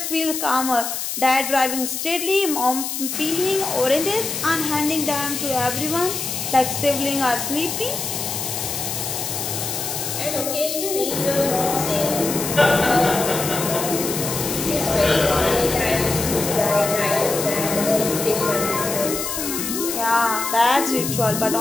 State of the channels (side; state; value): left; noise; hiss, 4 dB below the sound